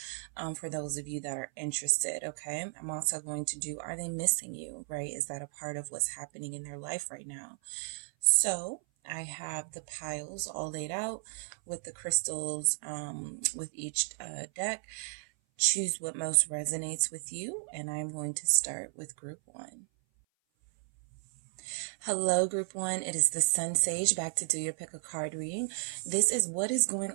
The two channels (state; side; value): silent; left; 55 dB below the other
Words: for those of you that are interested, okay? I'm also going to do, are they missing you, right? Is that a part of what's happening in their life right now? So I have the piles all laid out with the crystals with each deck. Choose what most resonates with you, and I'm going to start with group one. Hello, group one. It is the SunSage back to do your pick a card reading. This is what is going